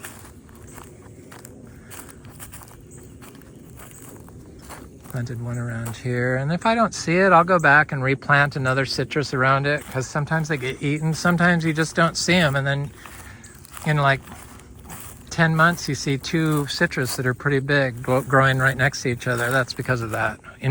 planted one around here, and if I don't see it, I'll go back and replant another citrus around it, because sometimes they get eaten. Sometimes you just don't see them, and then in like 10 months you see 2 citrus that are pretty big growing right next to each other. That's because of that,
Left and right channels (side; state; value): both; identical; correlation 1.00